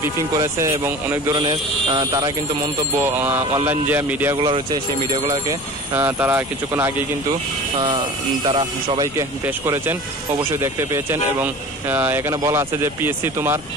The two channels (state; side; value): normal; both; correlation 0.38